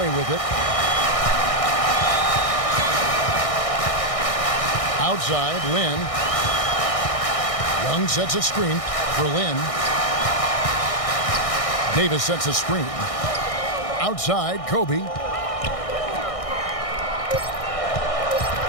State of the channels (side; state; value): right; late; 1.6 ms